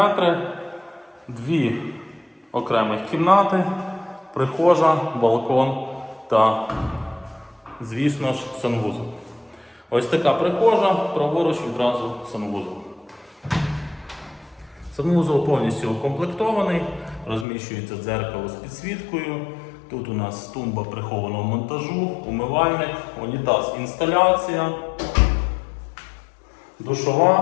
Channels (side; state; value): right; drops out; at 17.4 s